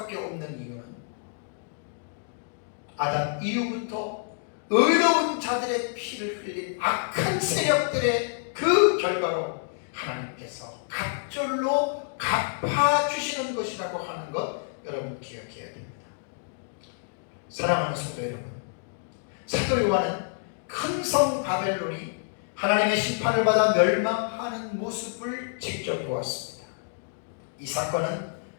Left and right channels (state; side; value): silent; right; digital silence